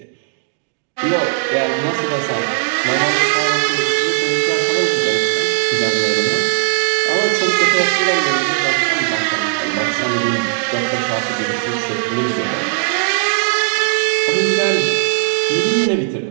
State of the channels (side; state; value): left; silent; digital silence